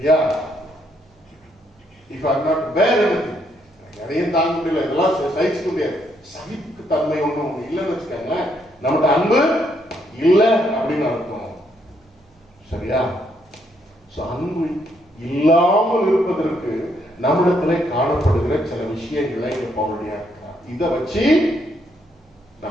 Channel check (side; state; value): both; normal; correlation 0.73